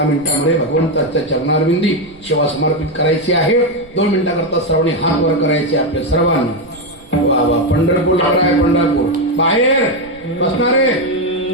मिनिटांमध्ये भगवंताच्या चरणारविंदी सेवा समर्पित करायची आहे. 2 मिनिटाकरता सर्वांनी हात वर करायचे आपले सर्वांना. वा वा, पंढरपूर आहे, पंढरपूर. बाहेर बसणारे,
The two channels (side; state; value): right; noise; rumble, 25 dB below the sound